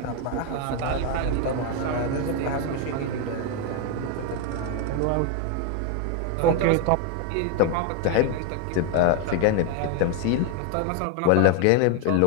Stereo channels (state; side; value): different; both; correlation 0.01